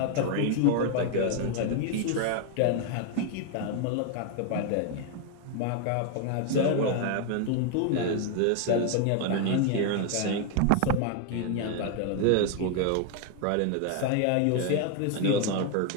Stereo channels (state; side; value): different; both; correlation 0.01